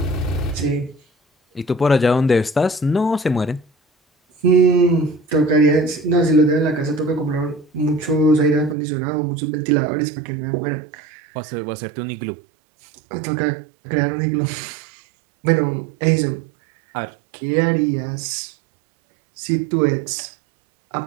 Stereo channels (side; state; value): left; drops out; at 8.8 s